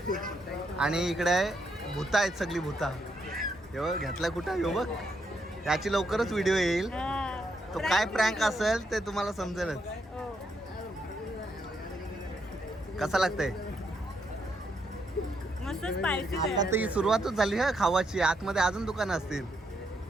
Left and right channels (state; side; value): normal; both; correlation 0.78